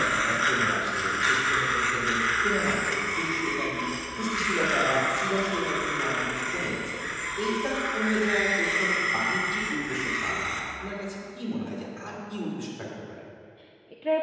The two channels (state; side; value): identical; both; correlation 1.00